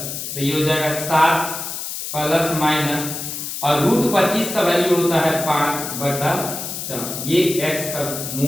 तो ये हो जाएगा 7 प्लस माइनस और रूट 25 का वैल्यू होता है 5 बटा 4, ये x का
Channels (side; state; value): left; noise; hiss, 6 dB below the sound